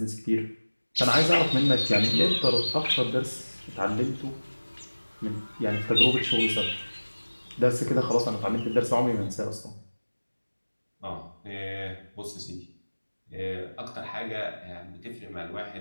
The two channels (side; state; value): both; inverted; correlation -1.00